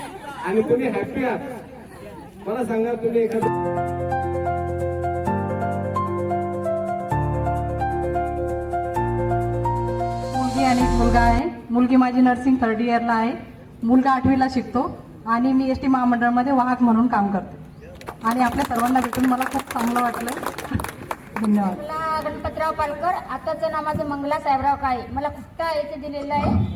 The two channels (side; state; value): both; identical; correlation 1.00